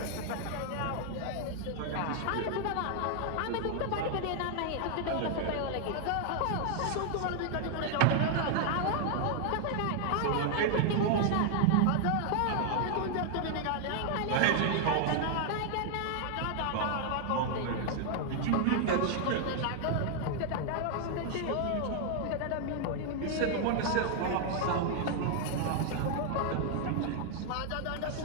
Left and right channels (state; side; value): different; both; correlation 0.00